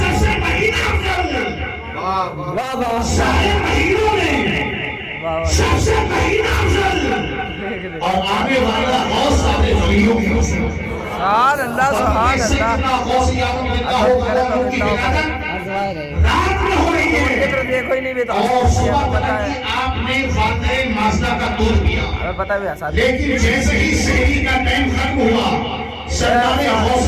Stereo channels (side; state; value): both; identical; correlation 1.00